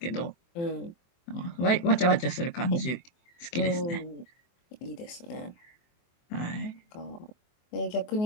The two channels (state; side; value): late; right; 23 ms